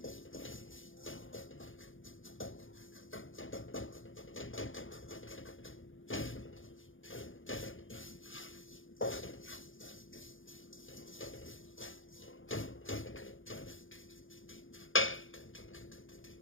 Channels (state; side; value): late; right; 0.58 ms